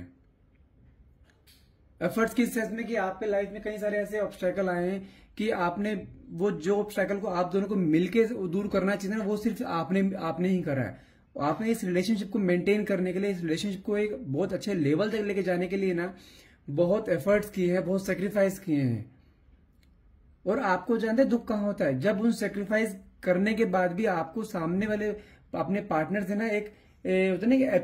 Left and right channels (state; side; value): identical; both; correlation 1.00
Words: एफर्ट्स किस सेंस में कि आपके लाइफ में कई सारे ऐसे ऑब्स्टेकल आए हैं कि आपने वो जो ऑब्स्टेकल को आप दोनों को मिलके दूर करना चाहिए ना, वो सिर्फ आपने ही करा है। आपने इस रिलेशनशिप को मेंटेन करने के लिए, इस रिलेशनशिप को एक बहुत अच्छे लेवल तक लेके जाने के लिए ना बहुत एफर्ट्स किए हैं, बहुत सेक्रीफाइस किए हैं। और आपको जानते हैं दुख कहां होता है, जब उन सेक्रीफाइस करने के बाद भी आपको सामने वाले अपने पार्टनर से ना एक होता है ना